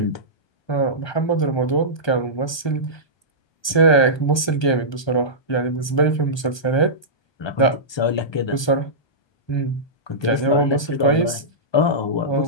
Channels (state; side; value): late; right; 1.2 ms